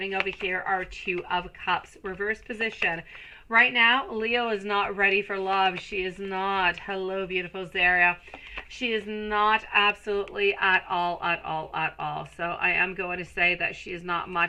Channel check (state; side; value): identical; both; correlation 1.00